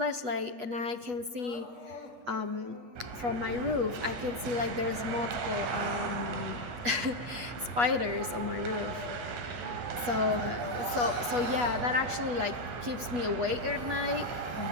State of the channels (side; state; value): left; late; 8.3 ms